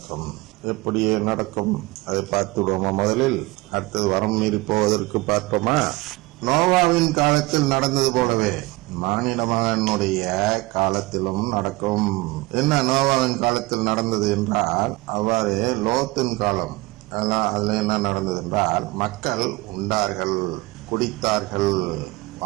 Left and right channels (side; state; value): left; quieter; 21.9 dB